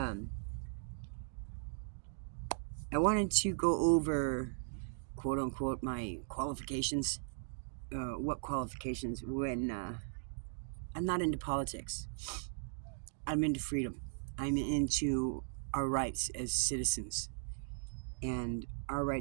wanted to go over, quote unquote, my qualifications. What qualifications when I'm not into politics. I'm into freedom. I'm into our rights as citizens and our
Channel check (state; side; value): silent; left; digital silence